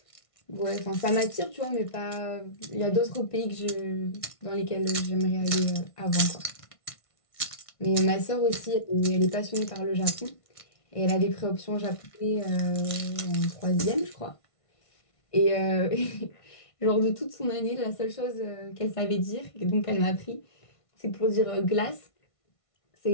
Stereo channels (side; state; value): right; late; 1.5 ms